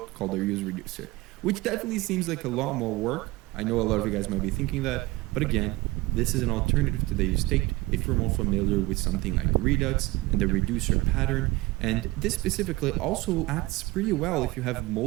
called the useReducer, which definitely seems like a lot more work. I know a lot of you guys might be thinking that, but again, this is an alternative to the useState if you're more familiar with something like Redux and the reducer pattern. And this specifically also acts pretty well if you have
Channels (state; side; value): quieter; left; 20.4 dB